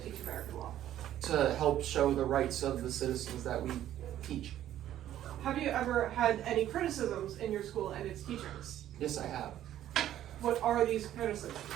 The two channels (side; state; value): left; quieter; 12.1 dB